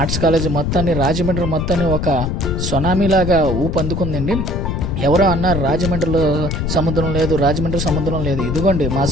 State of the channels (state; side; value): noise; left; rumble, 2 dB below the sound